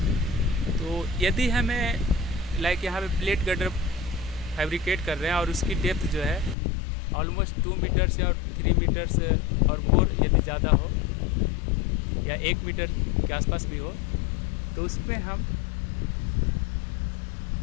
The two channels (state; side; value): drops out; right; at 6.6 s